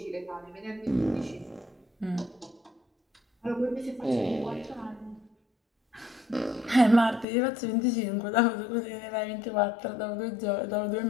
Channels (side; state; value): right; drops out; at 7.2 s